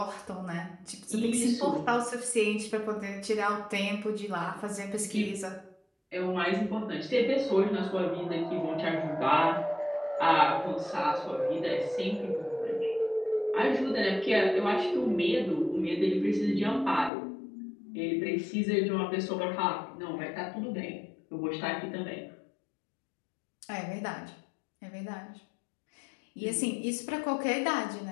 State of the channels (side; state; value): right; drops out; at 17.1 s